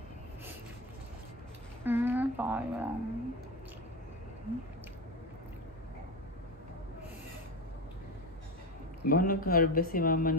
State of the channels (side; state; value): both; normal; correlation 0.19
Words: Sayang. Ba nag-harvest si mama